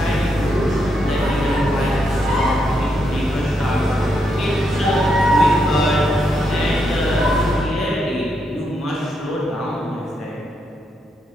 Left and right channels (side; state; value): both; normal; correlation 0.80